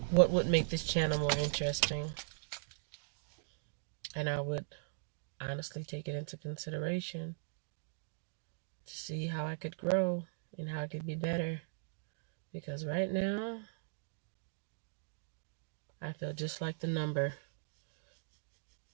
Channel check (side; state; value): left; silent; digital silence